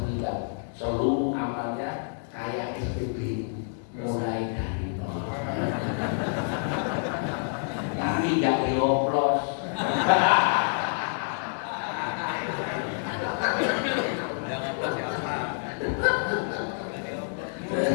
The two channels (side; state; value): right; silent; digital silence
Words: meninggal. Seluruh amalnya kayak SPB, mulai dari nol. Tapi nggak dioplos.